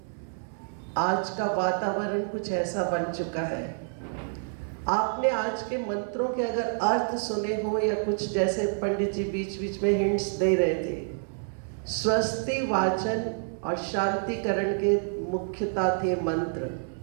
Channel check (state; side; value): silent; left; digital silence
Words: आज का वातावरण कुछ ऐसा बन चुका है। आपने आज के मंत्रों के अगर अर्थ सुने हो या कुछ, जैसे पंडित जी बीच बीच में हिंट्स दे रहे थे, स्वस्ति वाचन और शांतिकरण के मुख्यता थे मंत्र।